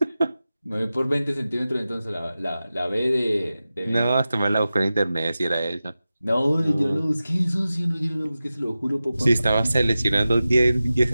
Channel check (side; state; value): both; inverted; correlation -0.94